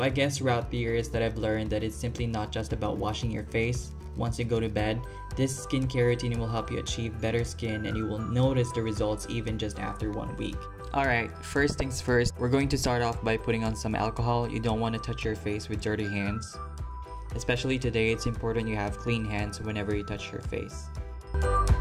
I guess throughout the years that I've learned that it's simply not just about washing your face once you go to bed. This skincare routine will help you achieve better skin and you will notice the results even just after 1 week. Alright, first things first, we're going to start off by putting on some alcohol. You don't want to touch your face with dirty hands. Especially today, it's important you have clean hands whenever you touch your face.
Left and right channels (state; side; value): identical; both; correlation 1.00